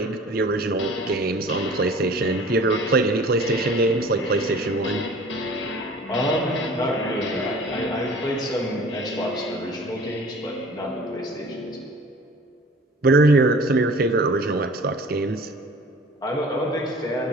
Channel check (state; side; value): normal; both; correlation 0.46